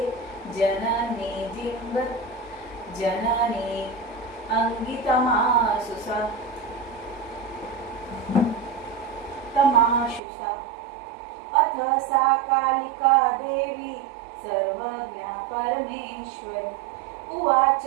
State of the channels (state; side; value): drops out; left; at 10.2 s